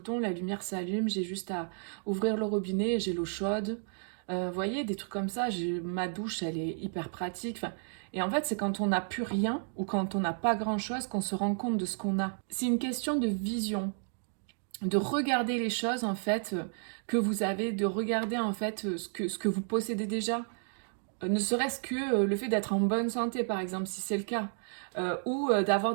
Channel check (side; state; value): left; silent; 56 dB below the other